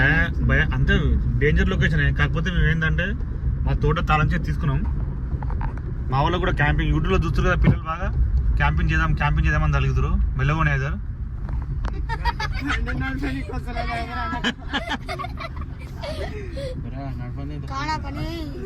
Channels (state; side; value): identical; both; correlation 1.00